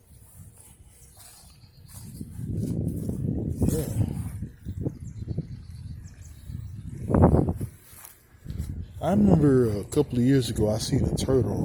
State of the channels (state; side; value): identical; both; correlation 1.00